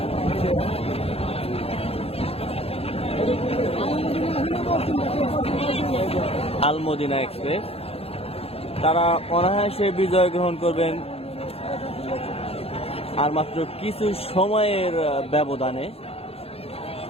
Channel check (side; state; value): right; late; 0.29 ms